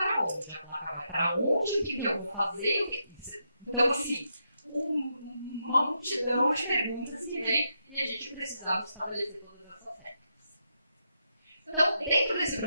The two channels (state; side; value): inverted; both; correlation -0.82